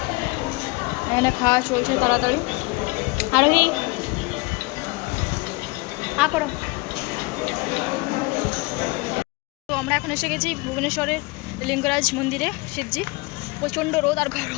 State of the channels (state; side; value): quieter; right; 25.2 dB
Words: এখানে খাওয়া চলছে তাড়াতাড়ি। আরোহী করো। তো আমরা এখন এসে গেছি ভুবনেশ্বরের লিঙ্গরাজ মন্দিরে, শিবজি। প্রচণ্ড রোদ আর